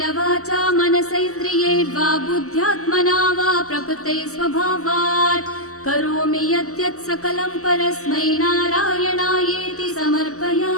वाचा मनसैन्द्रियैर्वा बुद्ध्यात्मना वा प्रकृते स्वभावात् करोमि यद्यत् सकलं परस्मै नारायणायेति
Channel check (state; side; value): late; right; 0.65 ms